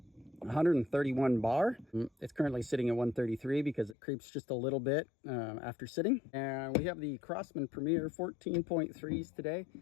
131 bar. It's currently sitting at 133 because it creeps just a little bit after sitting. And we have the Crosman Premier 14.3s today.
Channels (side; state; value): right; drops out; at 4.0 s